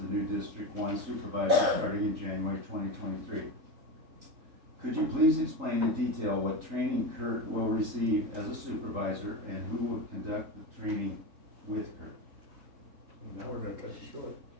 new District 1 Supervisor starting in January 2023. Could you please explain in detail what training Kurt will receive as a supervisor and who will conduct the training with Kurt? Now we're gonna cut it short.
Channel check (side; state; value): left; late; 3.8 ms